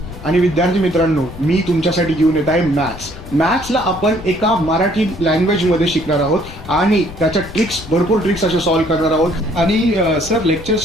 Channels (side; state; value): left; noise; rumble, 14 dB below the sound